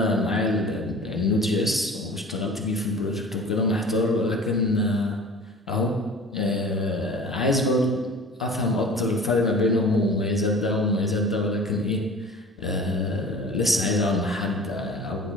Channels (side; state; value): both; normal; correlation 0.42